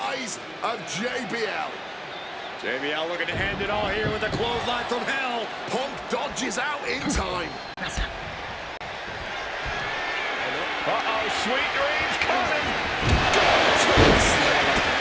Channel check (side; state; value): both; identical; correlation 1.00